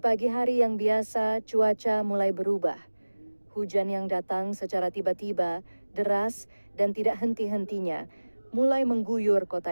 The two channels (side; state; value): both; inverted; correlation -1.00